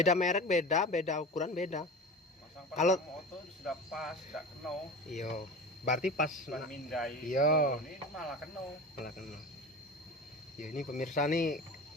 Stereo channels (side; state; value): both; normal; correlation 0.32